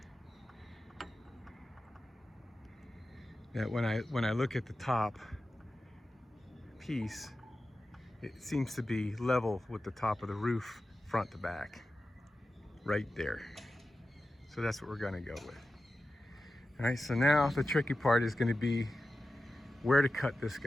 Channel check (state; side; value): normal; both; correlation 0.93